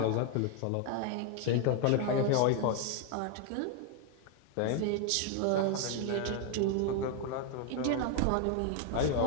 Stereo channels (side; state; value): both; different; correlation 0.01